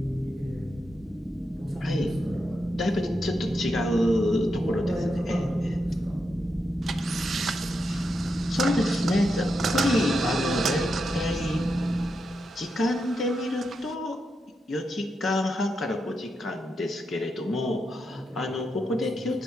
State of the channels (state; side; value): normal; both; correlation 0.85